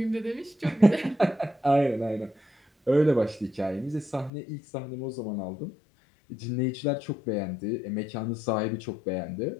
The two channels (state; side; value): drops out; right; at 4.3 s